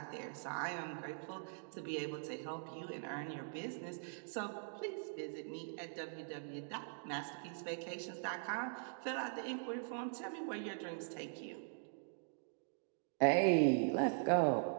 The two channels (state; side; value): silent; left; digital silence